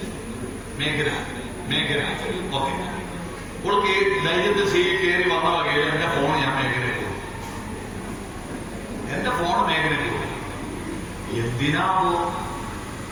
മേഘന. മേഘന. ഓക്കെ. അവൾക്ക് ധൈര്യത്തിൽ സീറ്റിൽ കയറി വന്ന വകയിൽ എന്റെ ഫോൺ ഞാൻ മേഘനയ്ക്ക് കൊടുത്തു. എന്റെ ഫോൺ മേഘനയ്ക്ക് കൊടുത്തു. എന്തിനാവോ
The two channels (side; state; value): both; identical; correlation 1.00